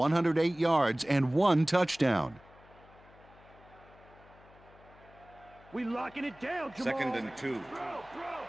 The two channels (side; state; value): left; noise; hum, 24 dB below the sound